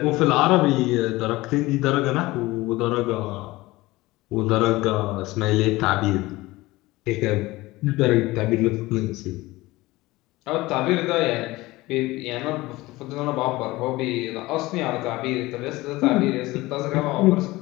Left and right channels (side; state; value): right; quieter; 19.8 dB